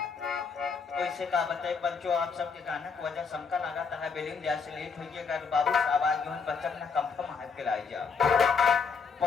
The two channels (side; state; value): right; quieter; 5.4 dB